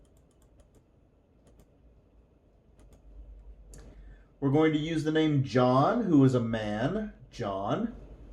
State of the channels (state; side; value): identical; both; correlation 1.00